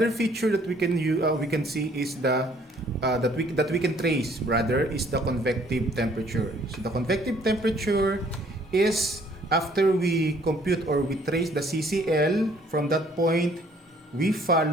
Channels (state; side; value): normal; both; correlation 0.61